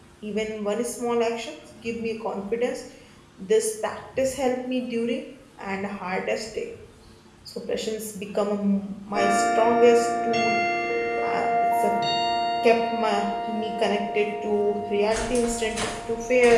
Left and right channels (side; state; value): both; identical; correlation 1.00